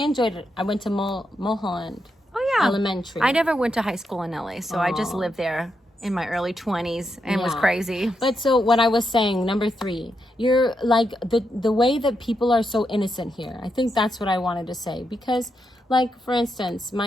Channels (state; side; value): normal; both; correlation 0.83